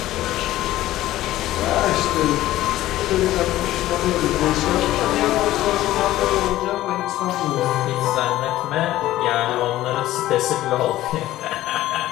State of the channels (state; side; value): quieter; right; 15.1 dB